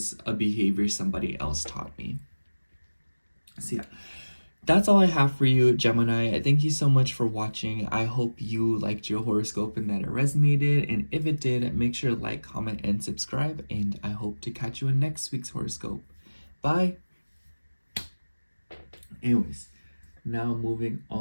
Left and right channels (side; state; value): both; inverted; correlation -1.00